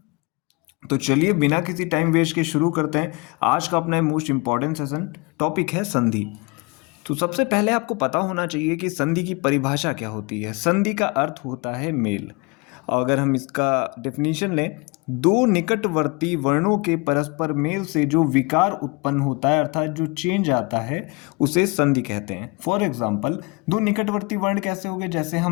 तो चलिए बिना किसी टाइम वेस्ट के शुरू करते हैं। आज का अपना मोस्ट इम्पॉर्टेंट सेशन टॉपिक है संधि। तो सबसे पहले आपको पता होना चाहिए कि संधि की परिभाषा क्या होती है। संधि का अर्थ होता है मेल। अगर हम इसका डेफिनेशन लें, दो निकटवर्ती वर्णों के परस्पर मेल से जो विकार उत्पन्न होता है, अर्थात जो चेंज आता है, उसे संधि कहते हैं। फॉर एग्जाम्पल, दो निकटवर्ती वर्ण कैसे हो गए? जैसे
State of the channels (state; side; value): quieter; right; 27.6 dB